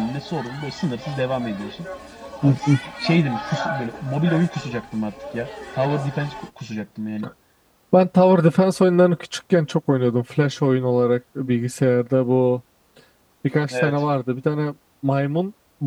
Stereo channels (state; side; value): identical; both; correlation 1.00